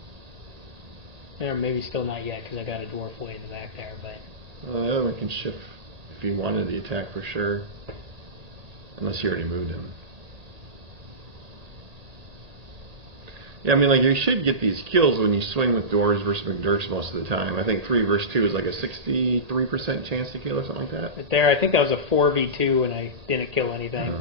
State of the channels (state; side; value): late; left; 1.8 ms